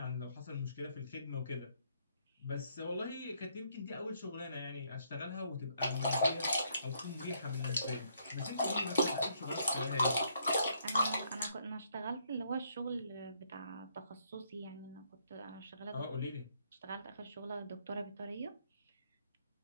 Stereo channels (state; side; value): inverted; both; correlation -0.70